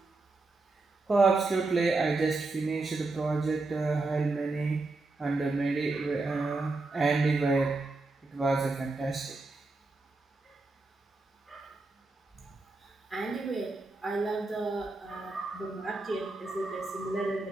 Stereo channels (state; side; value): quieter; left; 3.4 dB